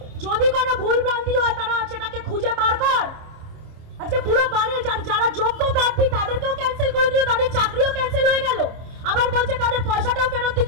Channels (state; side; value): late; left; 26 ms